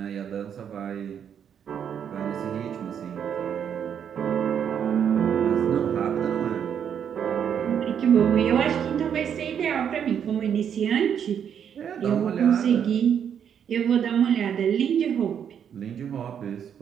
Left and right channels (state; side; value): quieter; left; 8.3 dB